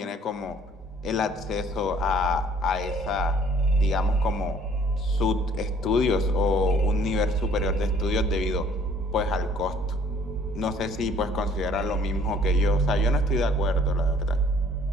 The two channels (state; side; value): normal; both; correlation 0.58